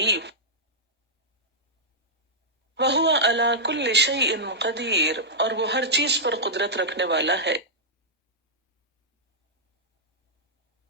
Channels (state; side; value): normal; both; correlation -0.10